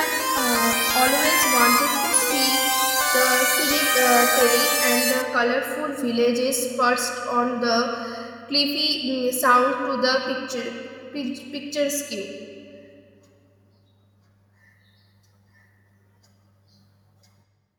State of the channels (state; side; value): identical; both; correlation 1.00